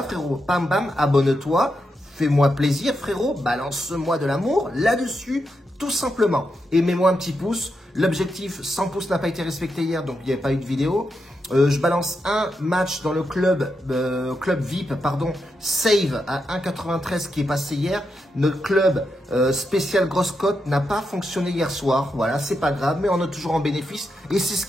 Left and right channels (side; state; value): both; normal; correlation 0.84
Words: frérot. Bam, bam, abonne-toi. Fais-moi plaisir, frérot. Balance-moi de l'amour là-dessus, tout simplement. Et mets-moi un petit pouce. L'objectif, 100 pouces n'a pas été respecté hier, donc il n'y avait pas eu de vidéo. Je balance un match dans le club VIP, pardon, Save à 1,93 qui est passé hier. Notre club spécial grosse cote n'a pas fonctionné hier soir. Voilà, c'est pas grave, mais on est toujours en bénéfice. Et c'est ce